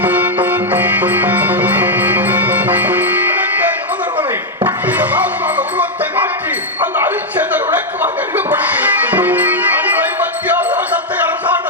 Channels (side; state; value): both; normal; correlation -0.01